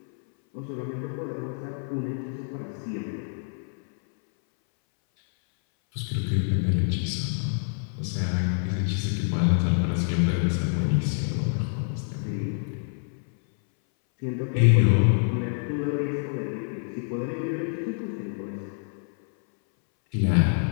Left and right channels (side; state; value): right; silent; 60 dB below the other